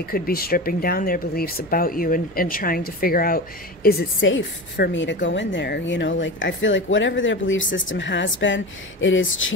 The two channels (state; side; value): normal; both; correlation 0.27